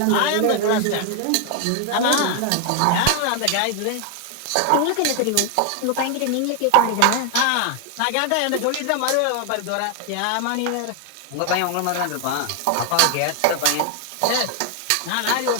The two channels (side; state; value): both; different; correlation 0.00